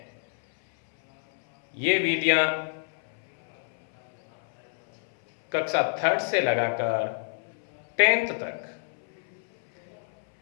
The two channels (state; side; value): silent; right; 60 dB below the other